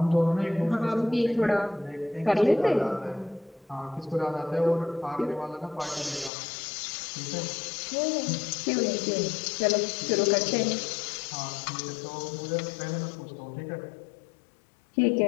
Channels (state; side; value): drops out; right; at 6.3 s